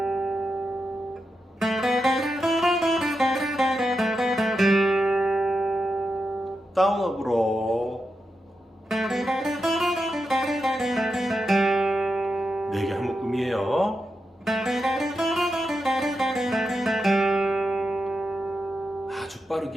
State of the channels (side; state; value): both; normal; correlation 0.87